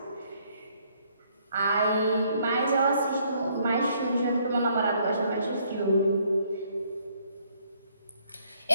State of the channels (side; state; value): both; inverted; correlation -0.67